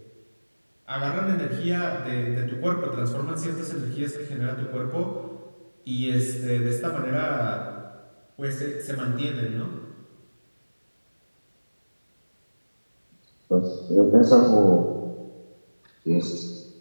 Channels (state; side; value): inverted; both; correlation -1.00